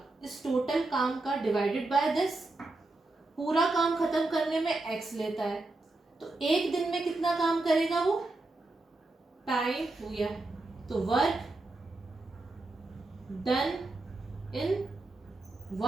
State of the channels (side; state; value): left; quieter; 3.0 dB